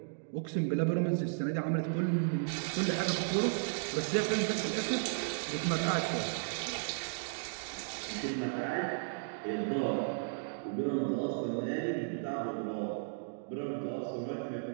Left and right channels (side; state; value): left; silent; digital silence